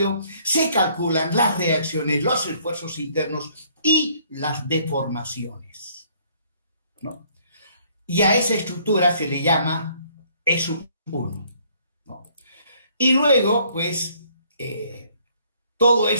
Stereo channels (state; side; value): inverted; both; correlation -0.63